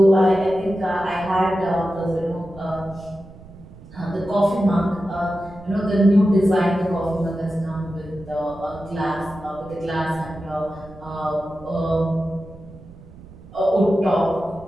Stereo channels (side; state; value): right; noise; rumble, 19 dB below the sound